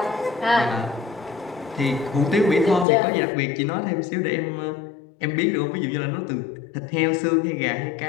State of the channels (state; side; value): drops out; right; at 2.9 s